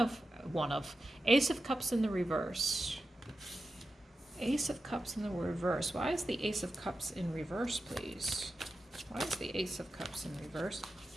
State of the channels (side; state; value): both; normal; correlation 0.91